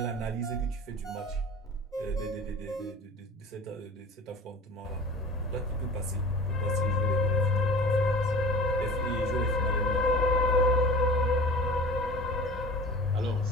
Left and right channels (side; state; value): both; normal; correlation 0.40